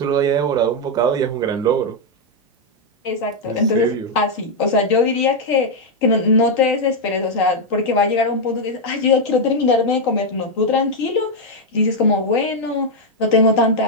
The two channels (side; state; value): both; normal; correlation 0.00